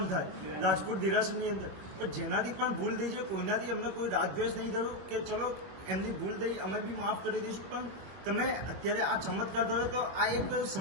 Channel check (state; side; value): late; left; 21 ms